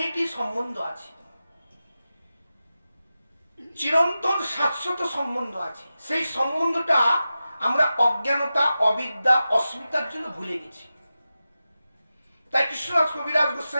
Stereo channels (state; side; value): inverted; both; correlation -0.93